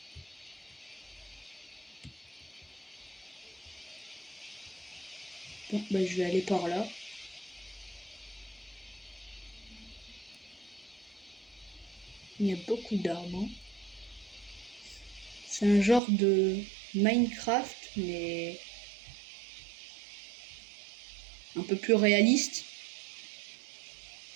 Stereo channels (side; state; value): left; drops out; at 16.0 s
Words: Bon, bah, je vais aller par là. Il y a beaucoup d'arbres. Hein. C'est un genre de Minecraft, mais un peu plus réaliste.